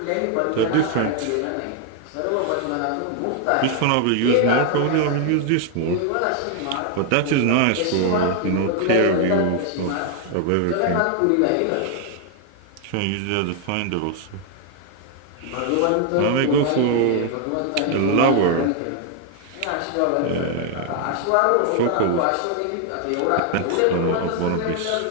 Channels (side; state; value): both; different; correlation 0.00